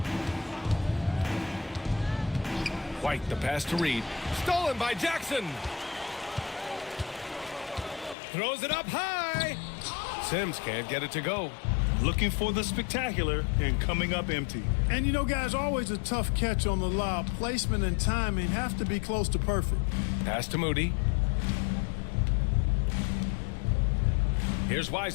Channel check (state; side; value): drops out; right; at 8.2 s